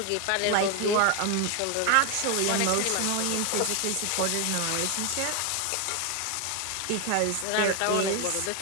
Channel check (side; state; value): both; different; correlation 0.01